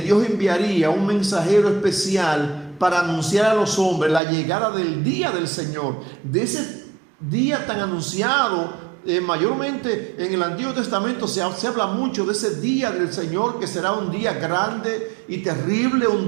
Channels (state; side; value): drops out; left; at 4.2 s